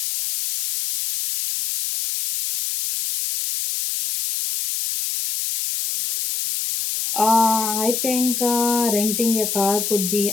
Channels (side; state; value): left; noise; hiss, 2 dB below the sound